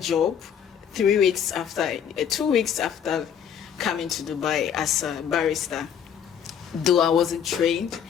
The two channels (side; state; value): right; quieter; 8.4 dB